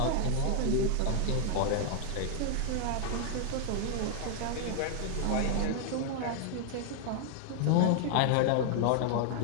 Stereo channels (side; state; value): both; different; correlation 0.00